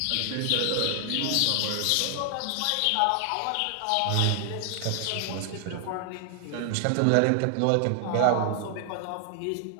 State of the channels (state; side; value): different; both; correlation 0.00